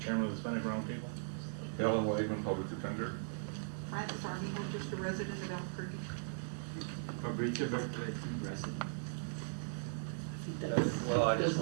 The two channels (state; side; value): silent; left; digital silence